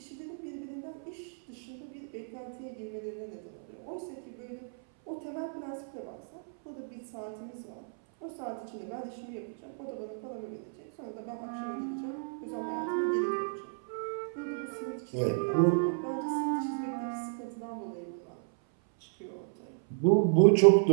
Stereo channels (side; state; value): left; silent; 56 dB below the other